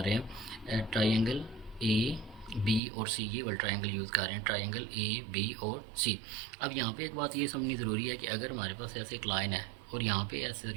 हैं ट्राइंगल ए बी और सी, ये वाला ट्रायंगल यूज़ कर रहे हैं, ट्रायंगल ए बी और सी। अब यहाँ पे एक बात ये समझनी ज़रूरी है कि अगर हमारे पास ऐसे एक लाइन है और यहाँ पे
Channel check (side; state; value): left; drops out; at 2.8 s